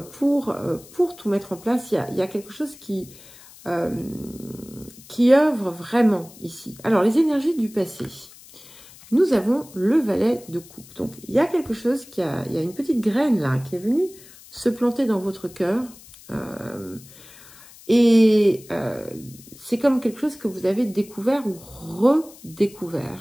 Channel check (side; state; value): left; noise; hiss, 21 dB below the sound